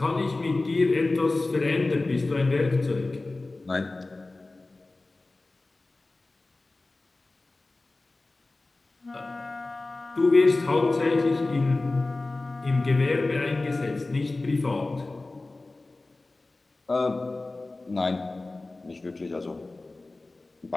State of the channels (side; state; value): right; quieter; 3.2 dB